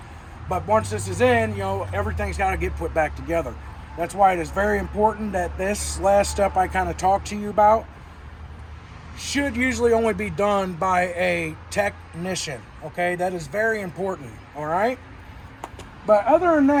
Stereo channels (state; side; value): identical; both; correlation 1.00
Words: But once this is in, everything's got to get put back together. That's why it is very important that this last step I kind of talked to you about should usually only be done by a technician, okay? That is very important, all right? But other than